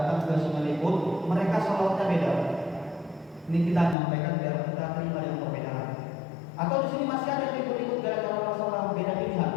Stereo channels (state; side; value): drops out; right; at 4.0 s